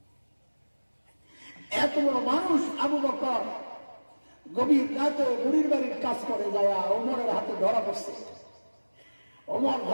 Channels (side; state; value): both; inverted; correlation -1.00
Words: এত বড় মানুষ আবু বকর, গভীর রাতে বুড়ির বাড়ির কাজ করে যায় ওমরের হাতে ধরা পড়ছে। ওমর